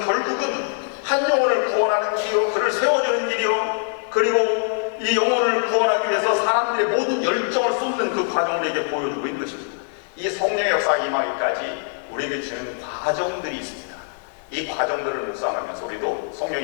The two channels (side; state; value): right; silent; digital silence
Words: 결국은 한 영혼을 구원하는 길이요, 그를 세워주는 길이요, 그리고 이 영혼을 구원하기 위해서 사람들의 모든 열정을 쏟는 그 과정을 우리에게 보여주고 있는 것입니다. 이 성령의 역사 임하기까지 우리에게 주는 과정들이 있습니다. 이 과정들을 묵상하면서 우리도